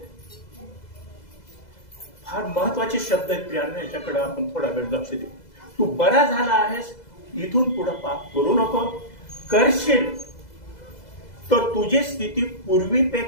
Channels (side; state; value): right; late; 2.0 ms